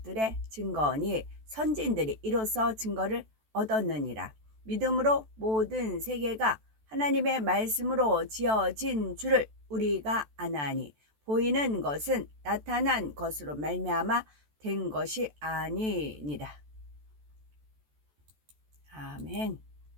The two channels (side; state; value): left; late; 14 ms